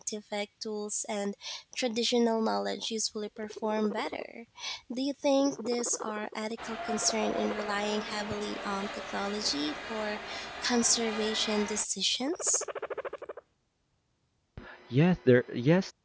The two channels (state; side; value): identical; both; correlation 1.00